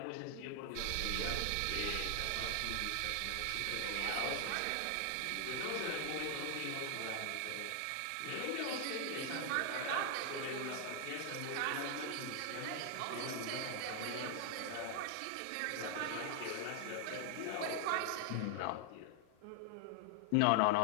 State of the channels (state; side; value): different; both; correlation 0.00